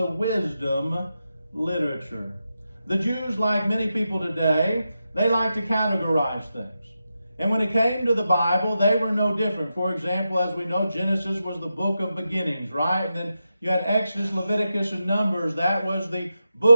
wisdom literature. The Jews, like many people today, they like to categorize things. And when it came to the Bible, they were no different. For example, as we know, Genesis was the book of beginnings, right? And then you had Exodus, Leviticus, and Numbers. That was the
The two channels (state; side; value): inverted; both; correlation -0.89